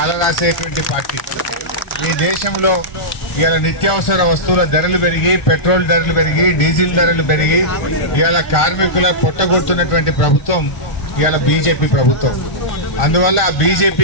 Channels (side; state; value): right; late; 1.4 ms